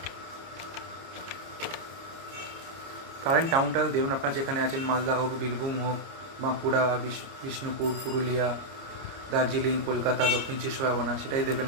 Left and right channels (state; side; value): late; left; 30 ms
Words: কারেন্ট টাউনটা দেবেন আপনার যেখানে আছেন, মালদা হোক, বীরভূম হোক, বাঁকুড়া, বিষ্ণুপুর, পুরুলিয়া, দার্জিলিং, কলকাতা, দক্ষিণ চব্বিশ পরগনা, সেটাই দেবেন